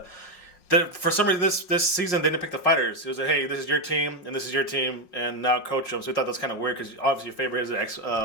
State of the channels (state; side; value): late; right; 5.5 ms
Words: for some reason this season they didn't pick the fighters. It was like, hey, this is your team and this is your team, and now coach them. So we thought that's kind of weird because obviously Faber is an